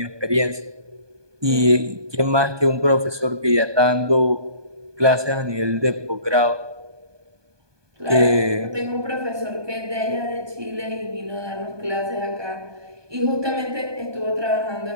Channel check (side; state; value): left; late; 1.2 ms